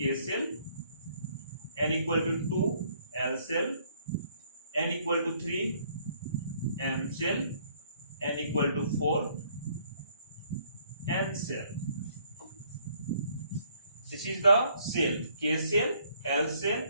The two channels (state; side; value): inverted; both; correlation -0.65